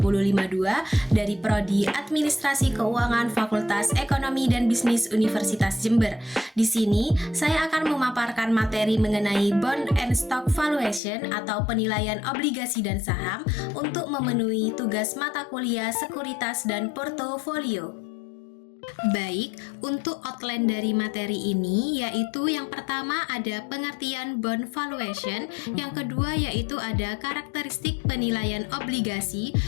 dari Prodi Administrasi Keuangan Fakultas Ekonomi dan Bisnis Universitas Jember. Di sini, saya akan memaparkan materi mengenai Bond and Stock Valuation atau penilaian obligasi dan saham untuk memenuhi tugas mata kuliah sekuritas dan portofolio. Baik, untuk outline dari materi ini yaitu yang pertama ada pengertian bond valuation, yang kedua yaitu ada karakteristik penilaian obligasi,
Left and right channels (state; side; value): drops out; right; at 11.0 s